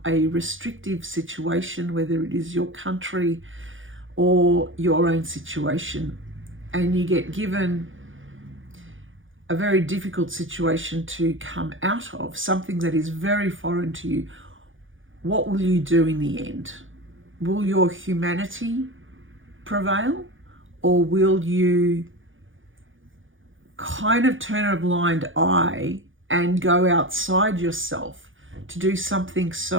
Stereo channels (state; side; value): late; left; 0.57 ms